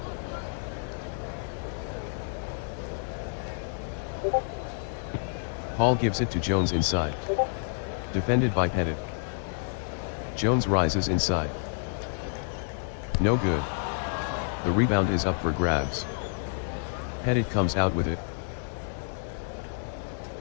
Hall gives it to Jones inside. Defended by Pettit. Jones rises inside. No good. The rebound is up for grabs. Pettit comes out with it.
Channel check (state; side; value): silent; right; digital silence